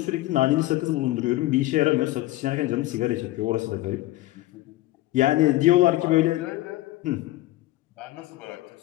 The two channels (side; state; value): right; quieter; 17.2 dB